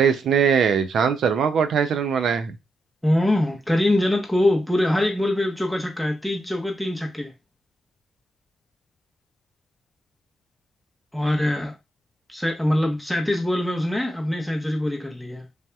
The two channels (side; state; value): both; normal; correlation 0.84